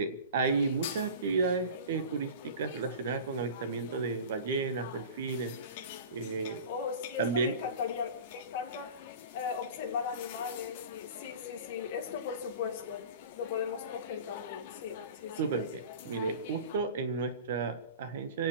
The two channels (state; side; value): inverted; both; correlation -0.36